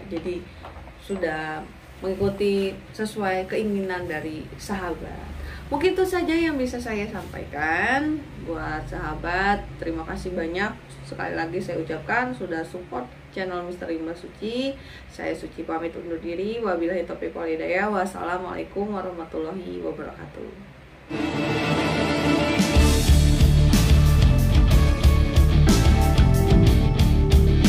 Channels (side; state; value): both; identical; correlation 1.00